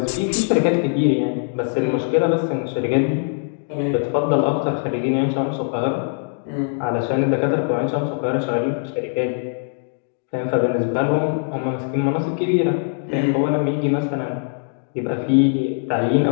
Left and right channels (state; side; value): silent; right; digital silence